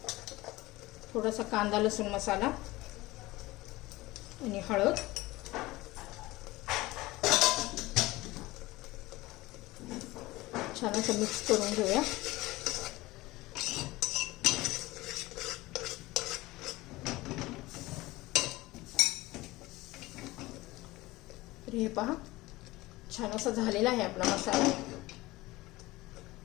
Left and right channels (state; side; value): quieter; right; 19.6 dB